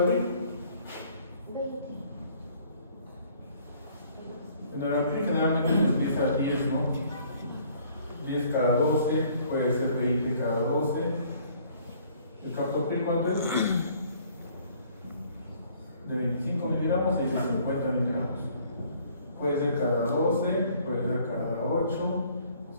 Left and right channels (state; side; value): inverted; both; correlation -0.59